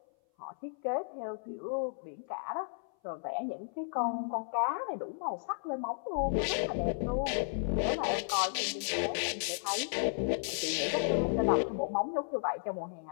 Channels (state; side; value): silent; right; 55 dB below the other